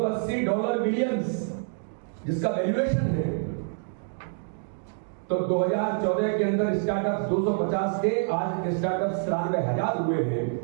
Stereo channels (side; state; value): left; silent; digital silence